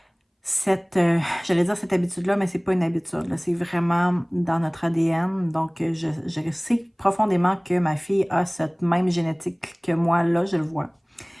j'allais dire cette habitude-là, mais c'est pas une habitude, là. C'est vraiment dans notre ADN. Donc, je sais profondément que ma fille a cette même génétique que moi, là, je le vois.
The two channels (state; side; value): identical; both; correlation 1.00